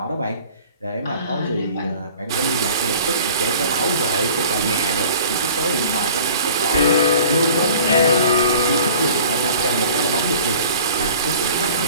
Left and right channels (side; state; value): both; inverted; correlation -0.45